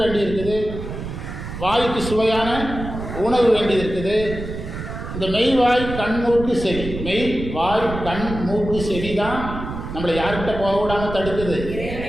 வேண்டி இருக்குது, வாய்க்கு சுவையான உணவு வேண்டி இருக்குது. இந்த மெய் வாய் கண் மூக்கு செவி, மெய் வாய் கண் மூக்கு செவி தான் நம்மளை யார்கிட்ட போக விடாமல் தடுக்குது,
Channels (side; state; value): right; noise; rumble, 8 dB below the sound